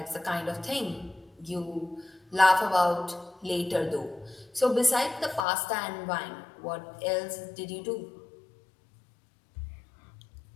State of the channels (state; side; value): drops out; right; at 5.5 s